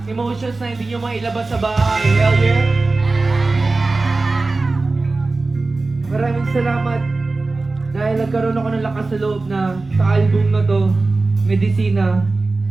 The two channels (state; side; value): quieter; left; 3.5 dB